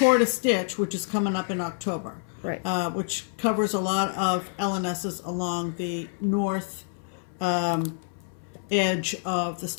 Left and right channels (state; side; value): silent; right; 60 dB below the other